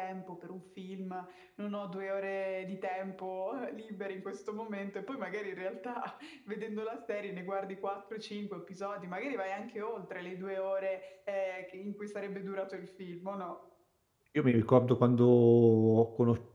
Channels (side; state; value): both; identical; correlation 1.00